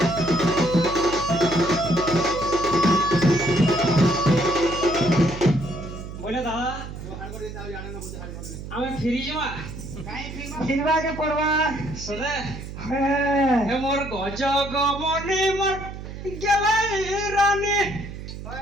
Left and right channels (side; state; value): right; noise; hum, 10 dB below the sound